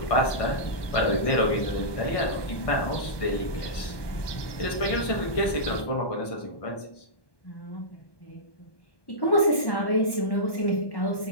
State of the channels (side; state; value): right; late; 1.2 ms